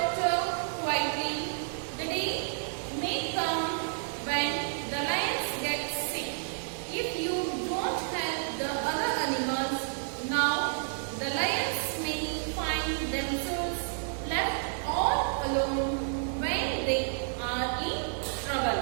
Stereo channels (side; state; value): left; silent; digital silence